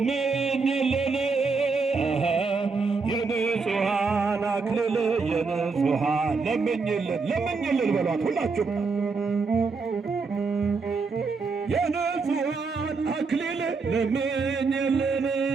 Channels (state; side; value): quieter; left; 4.5 dB